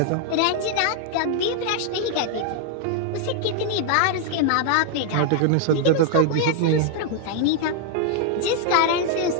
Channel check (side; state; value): both; different; correlation 0.00